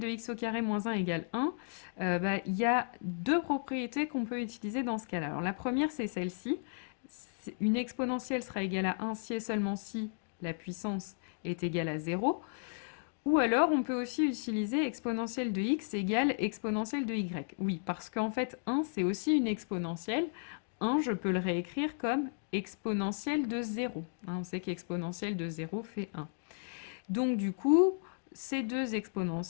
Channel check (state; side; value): silent; right; digital silence